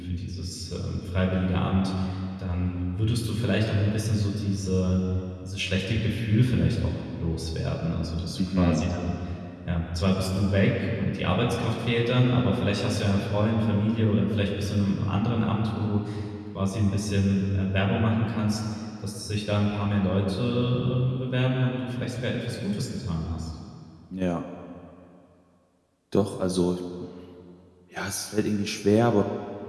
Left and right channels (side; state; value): both; identical; correlation 1.00